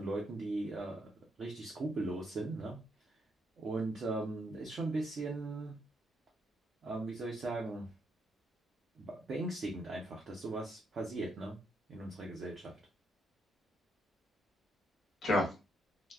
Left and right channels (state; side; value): normal; both; correlation 0.77